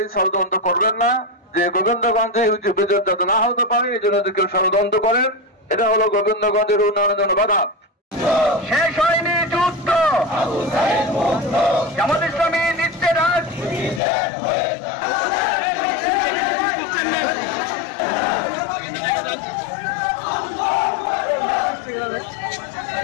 ষড়যন্ত্র করবেন না যে গোবিন্দগঞ্জে বিদ্যুৎ যাতে না হতে পারে এই জন্য কেউ ষড়যন্ত্র করেন। এটা হলো গোবিন্দগঞ্জের উন্নয়নের জন্য বাধা। শেষ হয়নি যুদ্ধ, জামাত ইসলামী নিচ্ছে রাজ।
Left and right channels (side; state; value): right; drops out; at 14.0 s